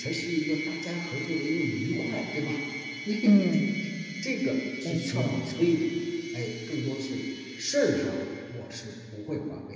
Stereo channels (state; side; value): identical; both; correlation 1.00